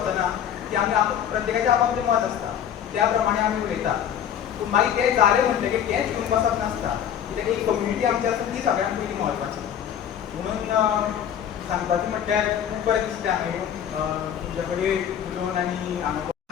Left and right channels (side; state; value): right; quieter; 9.3 dB